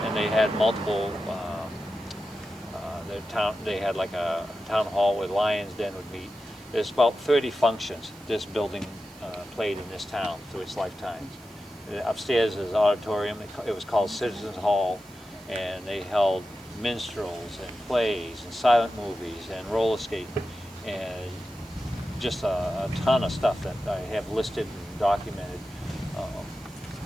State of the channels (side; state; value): right; noise; hiss, 25 dB below the sound